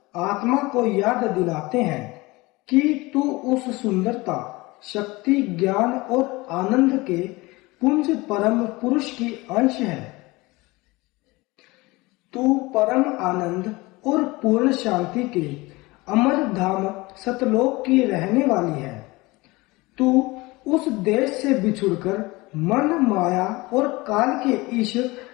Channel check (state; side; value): quieter; right; 22.3 dB